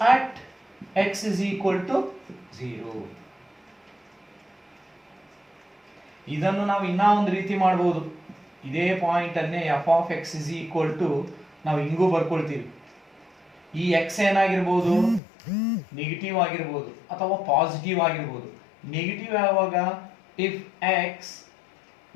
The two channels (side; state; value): right; drops out; at 15.2 s